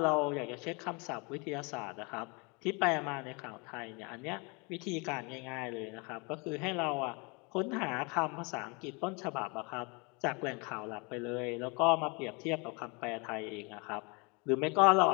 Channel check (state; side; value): quieter; right; 30.2 dB